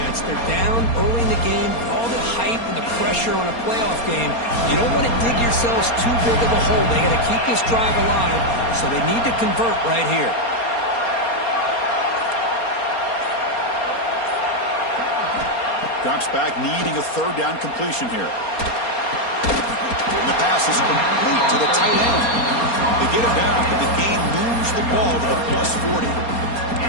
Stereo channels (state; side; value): late; right; 4.3 ms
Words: They're down early in the game. All the hype and the pressure on a playoff game. You don't want to dig yourselves too big of a hole. They got to keep this drive alive, so they need to convert right here. Drops back, needing a third down completion here. And the pass is complete to the tight end. They get it down, but the gain moves the ball to the +40.